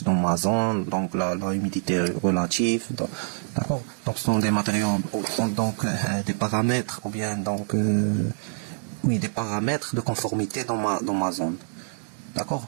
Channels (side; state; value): left; silent; digital silence